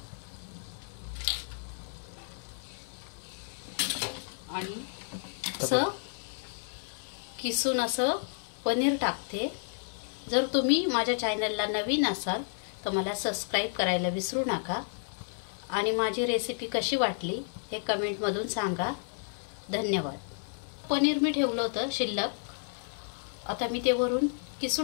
आणि असं किसून असं पनीर टाकते. जर तुम्ही माझ्या चॅनलला नवीन असाल तर मला सबस्क्राईब करायला विसरू नका आणि माझी रेसिपी कशी वाटली हे कमेंटमधून सांगा. धन्यवाद. पनीर मी ठेवलं होतं शिल्लक, आता मी ते वरून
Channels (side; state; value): right; silent; 57 dB below the other